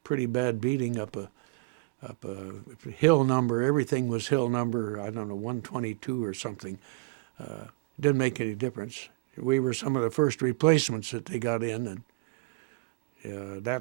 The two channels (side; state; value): left; quieter; 26.4 dB